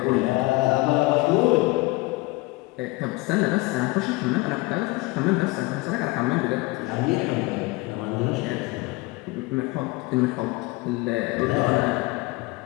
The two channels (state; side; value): quieter; right; 22.7 dB